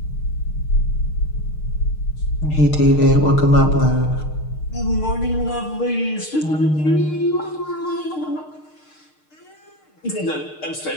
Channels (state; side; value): late; right; 6.6 ms